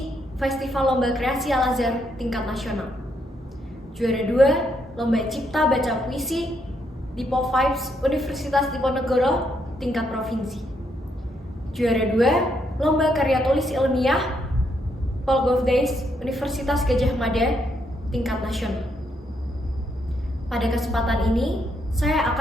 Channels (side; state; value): both; normal; correlation 0.76